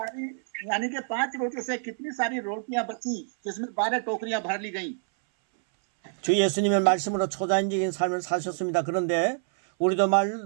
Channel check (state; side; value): silent; left; 60 dB below the other